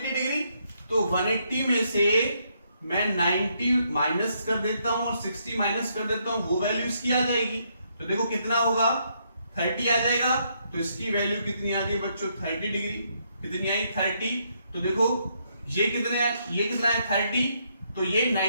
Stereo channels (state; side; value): inverted; both; correlation -0.75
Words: डिग्री। तो 180 में से मैं 90 माइनस कर देता हूं और 60 माइनस कर देता हूं, वो वैल्यू इसकी आ जाएगी। तो देखो कितना होगा 30 आ जाएगा। तो इसकी वैल्यू कितनी आ गई बच्चों 30 डिग्री, कितनी आई 30। तो देखो ये कितने है, ये कितना है 30, तो ये